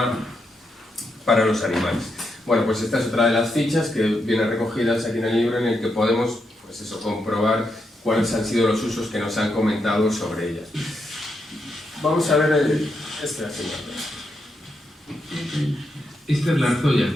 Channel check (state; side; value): normal; both; correlation 0.82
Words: para los animales. Bueno, pues esta es otra de las fichas que vienen recogidas aquí en el libro, en el que podemos pues eso, comprobar cuáles han sido los usos que nos han comentado sobre ellas. Vamos a ver este asunto. Esta es la arzolla.